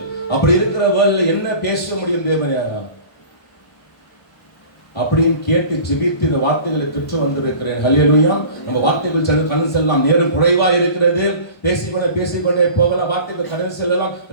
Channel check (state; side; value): late; right; 1.0 ms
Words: அப்படி இருக்கிற வேளையில என்ன பேச முடியும் தேவனே அப்படின்னு கேட்டு ஜெபித்து இந்த வார்த்தைகளை பெற்று வந்திருக்கிறேன். ஹல்லேலூயா. நம்ம வார்த்தைகள் கடந்து செல்லலாம். நேரம் குறைவா இருக்கிறது. பேசிக்கொண்டே போகலாம். வார்த்தைகள் கடந்து செல்லலாம்.